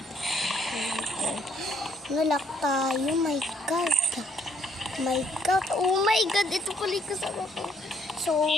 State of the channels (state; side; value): normal; both; correlation 0.67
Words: Nalak tayo. My God. My God. Oh my God. Ito pala yung kasama ko. So,